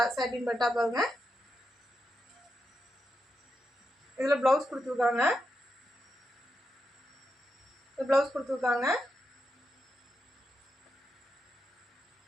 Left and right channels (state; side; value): normal; both; correlation 0.85